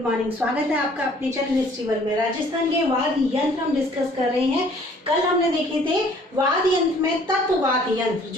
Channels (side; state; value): both; normal; correlation 0.57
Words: morning. स्वागत है आपका अपने चैनल हिस्ट्री वर्ल्ड में। राजस्थान के वाद्य यंत्र हम डिस्कस कर रहे हैं। कल हमने देखे थे वाद्य यंत्र में तत्ववाद्य यंत्र